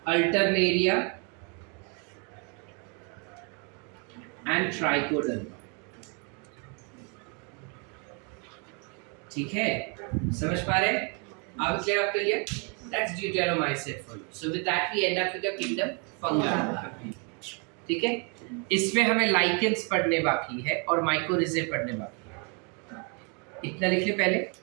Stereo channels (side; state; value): left; quieter; 35.5 dB